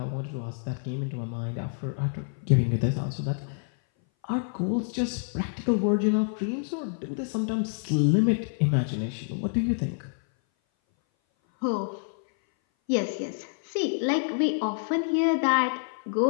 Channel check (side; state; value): right; silent; 58 dB below the other